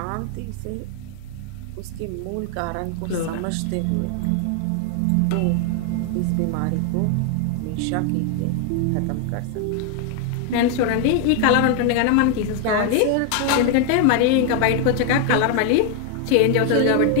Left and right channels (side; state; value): both; different; correlation 0.01